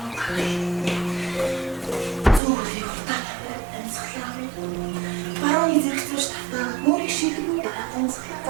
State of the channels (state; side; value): drops out; left; at 2.4 s